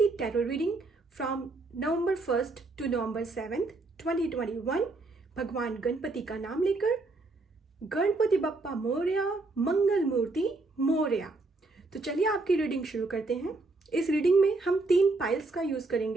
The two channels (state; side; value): quieter; left; 3.3 dB